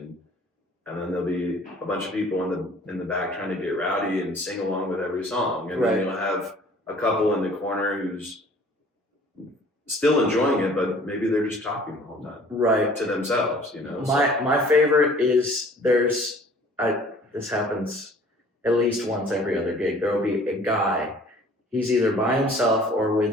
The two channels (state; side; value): normal; both; correlation 0.52